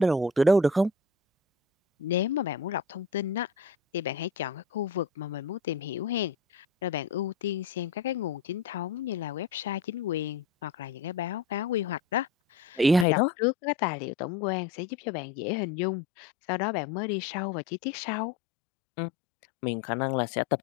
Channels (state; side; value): drops out; right; at 13.1 s